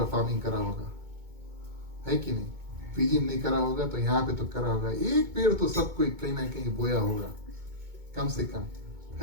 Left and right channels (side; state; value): left; late; 2.2 ms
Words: फार्मिंग करा होगा, है कि नहीं? पीजी नहीं करा होगा तो यहाँ पे तो करा होगा, एक पेड़ तो सब कोई कहीं ना कहीं बोया होगा कम से कम,